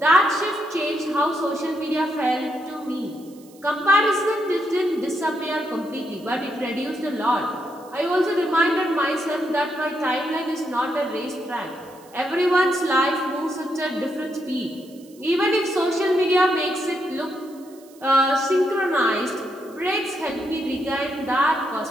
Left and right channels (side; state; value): right; noise; hiss, 26 dB below the sound